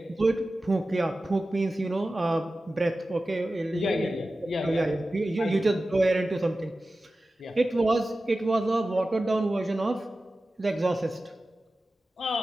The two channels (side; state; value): both; normal; correlation 0.95